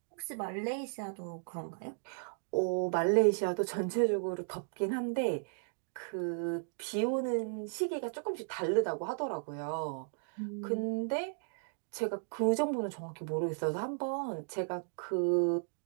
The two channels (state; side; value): silent; left; digital silence